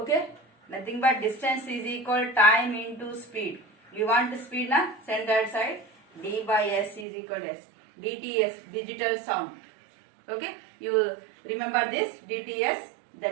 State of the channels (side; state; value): left; drops out; at 7.1 s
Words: nothing but distance is equal time into speed. We want the speed na, send that side. D by S is equal to S. DTS, digital sound. Okay, you remember this DTS,